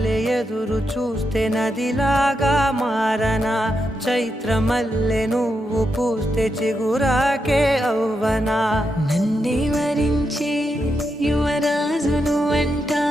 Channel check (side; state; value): both; normal; correlation 0.84